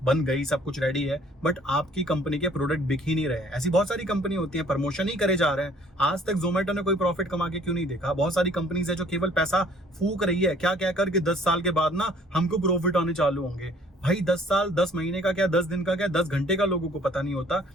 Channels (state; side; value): normal; both; correlation 0.57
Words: बन गई, सब कुछ रेडी है, बट आपकी कंपनी के प्रोडक्ट बिक ही नहीं रहे। ऐसी बहुत सारी कंपनी होती है, प्रमोशन ही करे जा रहे हैं। आज तक जोमेटो ने कोई प्रॉफिट कमा के क्यों नहीं देखा? बहुत सारी कंपनीज है जो केवल पैसा फूक रही है, क्या कहकर कि 10 साल के बाद ना हमको प्रॉफिट आने चालू होंगे। भाई 10 साल, 10 महीने का क्या, 10 दिन का क्या, 10 घंटे का लोगों को पता नहीं होता,